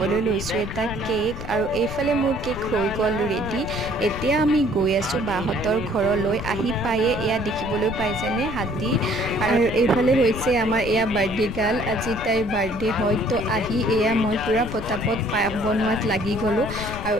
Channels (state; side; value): noise; left; rumble, 9 dB below the sound